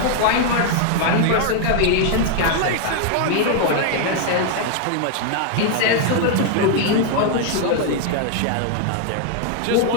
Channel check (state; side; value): different; both; correlation 0.00